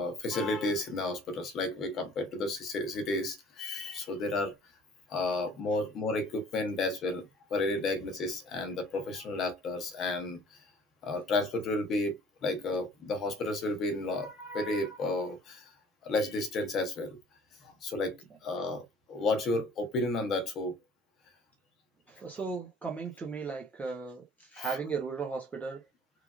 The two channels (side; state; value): both; normal; correlation 0.51